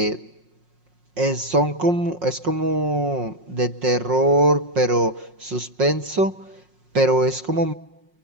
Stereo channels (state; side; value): late; left; 5.5 ms